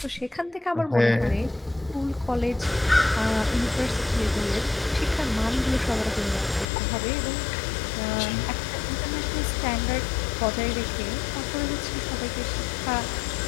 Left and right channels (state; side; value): drops out; right; at 6.7 s